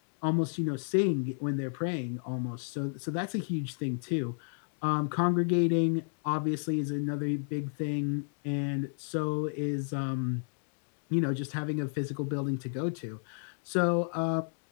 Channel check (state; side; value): silent; right; digital silence